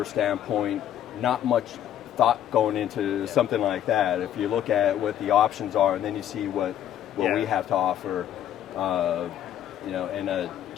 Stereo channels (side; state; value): right; quieter; 10.8 dB